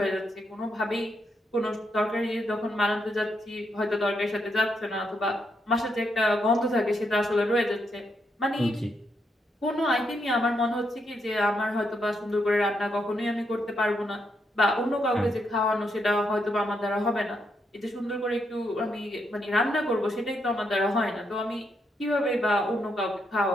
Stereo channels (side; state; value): both; normal; correlation 0.79